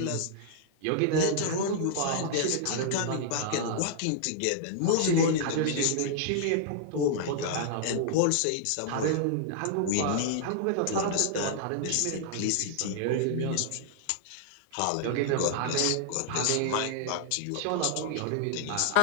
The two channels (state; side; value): different; both; correlation -0.01